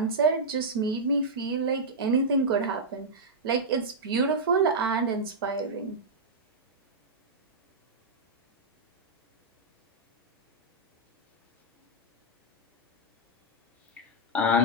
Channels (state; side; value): normal; both; correlation -0.08